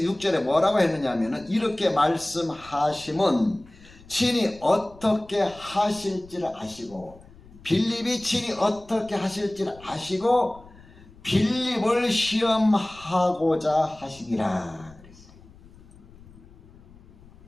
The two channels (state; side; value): noise; left; rumble, 23 dB below the sound